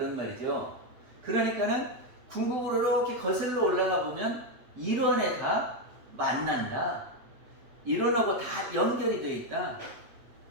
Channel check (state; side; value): late; left; 8.5 ms